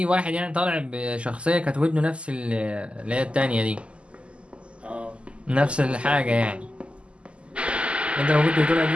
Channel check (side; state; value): left; late; 0.055 ms